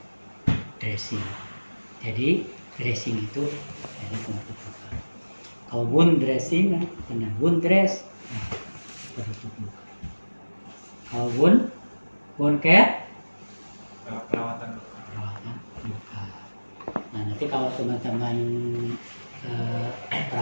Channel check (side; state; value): both; inverted; correlation -1.00